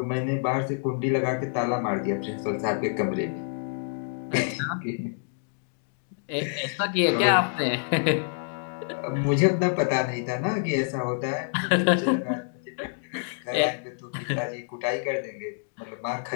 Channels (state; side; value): silent; right; digital silence